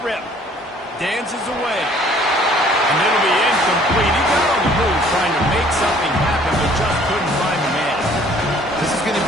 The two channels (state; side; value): normal; both; correlation 0.56